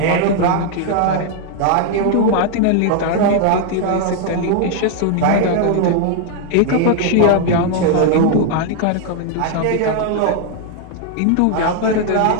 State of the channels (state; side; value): different; both; correlation 0.00